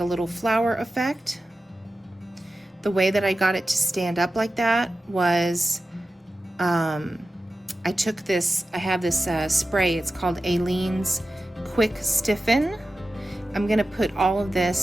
a little flower effect. The way that I got it to stand up like that was I took this, I have this spray, it's called Aileen's Quick Stiffen. I'm gonna put all of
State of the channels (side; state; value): both; normal; correlation 0.93